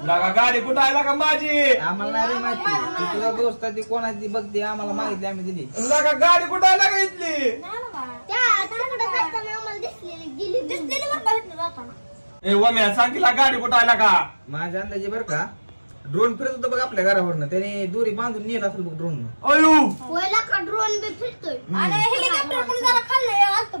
लागा गाडी कुठं आहे लागा माझी आम्हाला नाही रे माहिती ती तुझा दोस्त आहे ती कोणाची बघते आम्हाला माहिती आम्ही दिली लागा गाडी कुठं आहे लागा इथली नाही ना बा. त्या तिकडे जाताना आम्हाला दिसलेली गेली दिसलेली बरं का इथनं जाताना. ए वम्या सांगितला गाडी कुठं आहे लागा माझ्या अंदाजे बरं का ड्रोन फिरत होतं बघ आपल्या घरावरनं त्याने दोरी बांधून नेला असेल बघ ड्रोन अयो पहिला का ड्रोन बी फिरतोय आणि हेलिकॉप्टर पण जरा खाल्लंय आलतं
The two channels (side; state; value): both; inverted; correlation -1.00